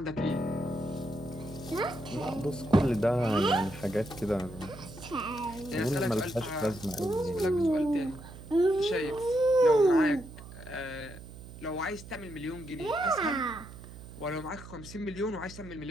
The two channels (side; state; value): right; noise; hum, 15 dB below the sound